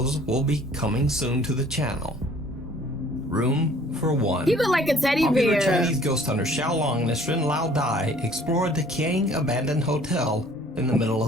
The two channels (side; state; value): both; normal; correlation 0.55